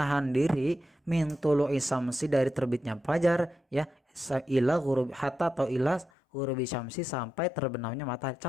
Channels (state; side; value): drops out; right; at 6.1 s